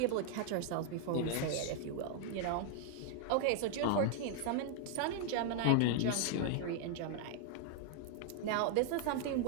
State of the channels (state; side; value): different; both; correlation 0.00